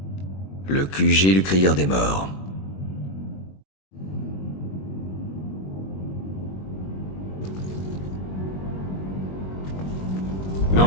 Le QG du Crieur des Morts.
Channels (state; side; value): late; right; 21 ms